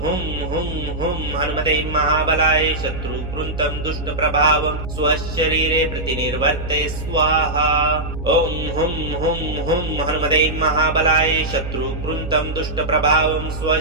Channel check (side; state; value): right; noise; hum, 8 dB below the sound